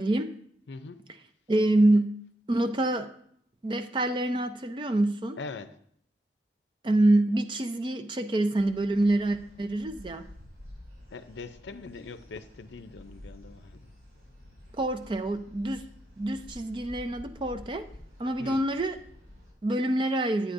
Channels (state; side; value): normal; both; correlation 0.85